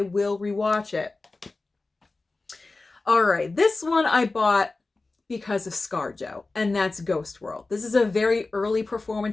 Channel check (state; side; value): quieter; right; 3.4 dB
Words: will rewatch it. All right, this one I bought because of ScarJo, and that's Ghost World. This is a very early